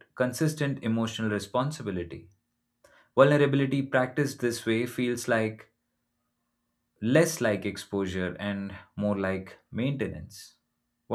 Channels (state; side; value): identical; both; correlation 1.00